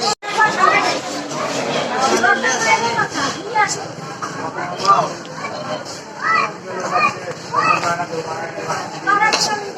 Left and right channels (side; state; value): both; identical; correlation 1.00